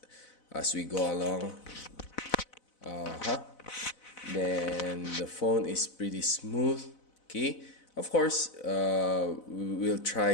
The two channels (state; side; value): late; right; 4.0 ms